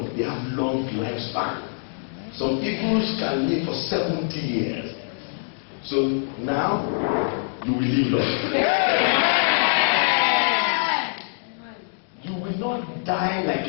They have long lifespan. Some eagles can live for 70 years. So now, you will live long. Yeah. You will not die like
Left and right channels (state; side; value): silent; right; digital silence